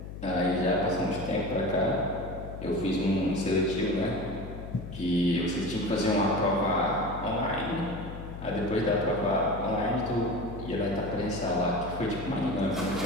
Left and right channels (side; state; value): left; noise; hum, 10 dB below the sound